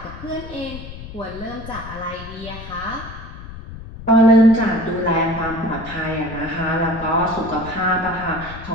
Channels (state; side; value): noise; left; rumble, 13 dB below the sound